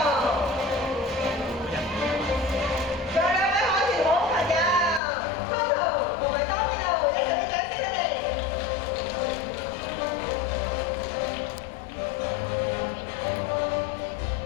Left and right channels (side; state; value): right; drops out; at 5.0 s